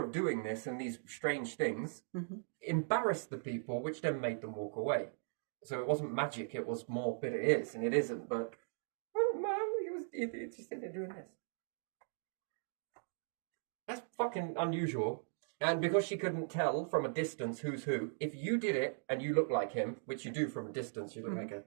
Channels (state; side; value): silent; left; digital silence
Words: of doing this and these strange things embarrassed the people, which then made them walk away. So it wasn't magic, it was more, but it is, and it isn't, but man, he just sitting there doing this. That's fucking unusual. And because she couldn't tell from a distance who's who, if you did it and you look like him, which you do from a distance, you look like a